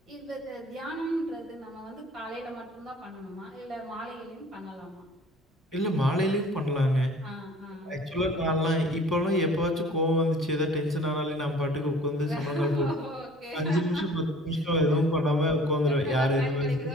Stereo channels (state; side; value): normal; both; correlation 0.49